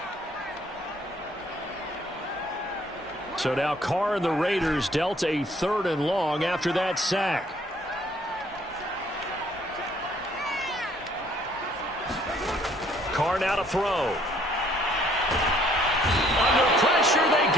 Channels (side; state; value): both; normal; correlation 0.62